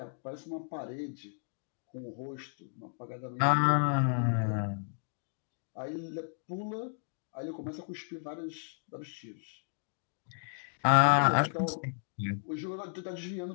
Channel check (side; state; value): right; silent; digital silence